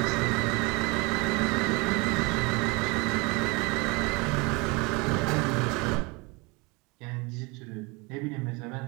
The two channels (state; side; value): quieter; left; 27.3 dB